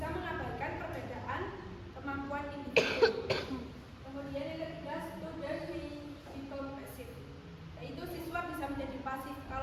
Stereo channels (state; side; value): identical; both; correlation 1.00